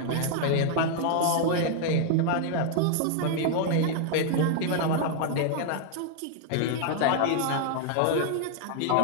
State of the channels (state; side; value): different; both; correlation 0.00